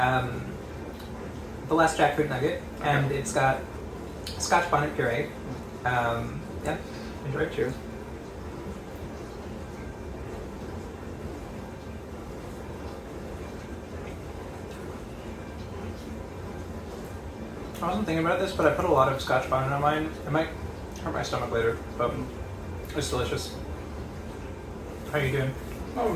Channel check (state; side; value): identical; both; correlation 1.00